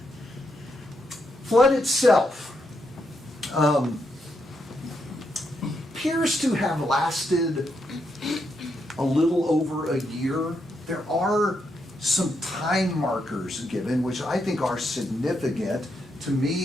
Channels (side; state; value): both; normal; correlation 0.81